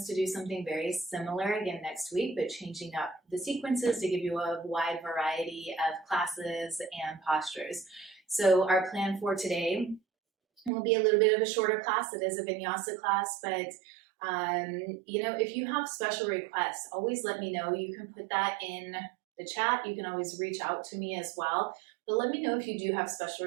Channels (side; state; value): left; drops out; at 10.7 s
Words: to do something very similar again next week, but changing up the sequences to give you a wide variety of classes and postures. So our plan for today will be a little bit of a shorter class. It is a vinyasa class, but if you have special requests, always let me know. You can put that in the chat. You can always reach out to me as well. But let me know if you do have